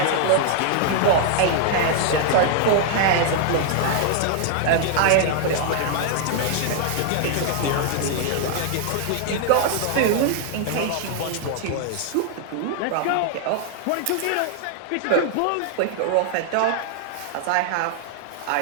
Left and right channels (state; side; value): different; both; correlation 0.00